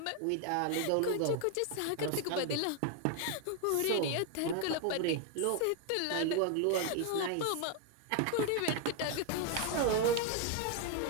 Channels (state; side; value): different; both; correlation 0.01